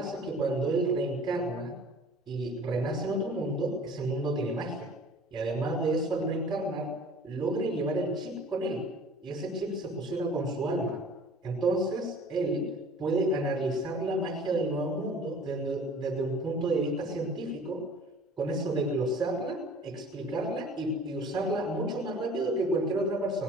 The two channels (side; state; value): both; normal; correlation 0.47